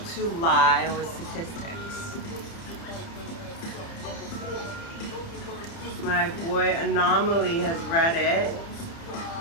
to Lie with Statistics. My boy Anomaly has read it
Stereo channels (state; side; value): late; right; 30 ms